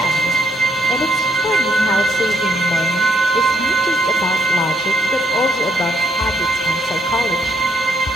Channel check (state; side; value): normal; both; correlation 0.73